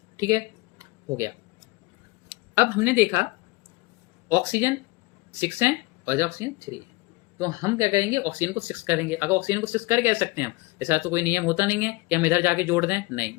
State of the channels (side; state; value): right; quieter; 23.2 dB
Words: ठीक है? हो गया। अब हमने देखा ऑक्सीजन 6 है और ऑक्सीजन 3 है, तो हम क्या करेंगे? ऑक्सीजन को 6 करेंगे। अगर ऑक्सीजन को 6 कर कह सकते हैं हम, ऐसा तो कोई नियम होता नहीं है कि हम इधर जाके जोड़ दें, नहीं,